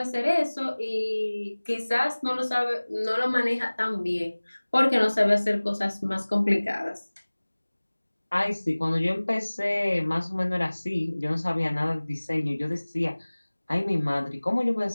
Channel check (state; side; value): inverted; both; correlation -1.00